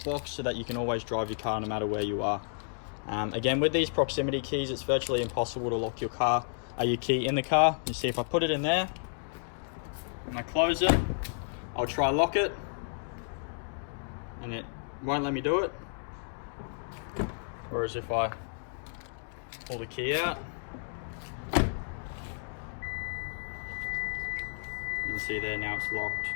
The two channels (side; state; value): right; silent; digital silence